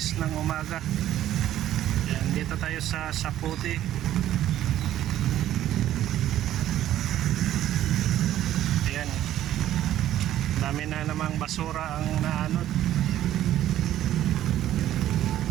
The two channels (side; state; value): left; quieter; 12.6 dB